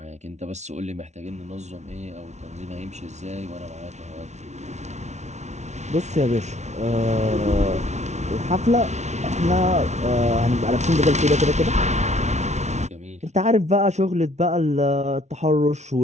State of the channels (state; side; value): late; left; 0.32 ms